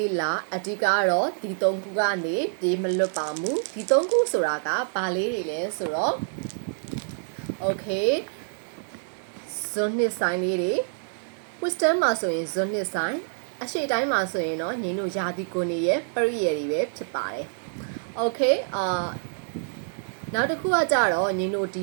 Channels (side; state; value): left; silent; digital silence